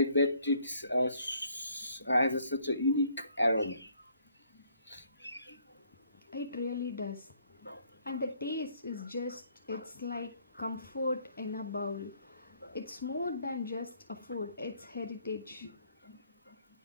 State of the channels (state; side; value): inverted; both; correlation -0.65